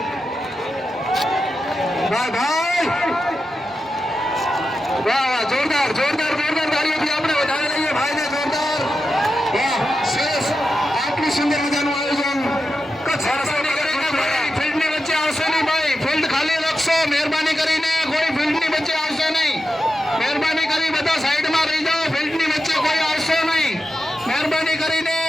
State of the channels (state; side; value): normal; both; correlation 0.90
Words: વાહ ભાઈ, વાહ વાહ, જોરદાર જોરદાર જોરદાર તાળીઓથી આપણે વધાવી લઈએ ભાઈને. જોરદાર, વાહ, સરસ. આટલું સુંદર મજાનું આયોજન ફિલ્ડની વચ્ચે આવશે નહીં ભાઈ, ફિલ્ડ ખાલી રાખશો. મહેરબાની કરીને કોઈ ફિલ્ડની વચ્ચે આવશે નહીં. મહેરબાની કરી બધા સાઈડમાં રહી જાઓ. ફિલ્ડની વચ્ચે કોઈ આવશે નહીં. મહેરબાની કરીને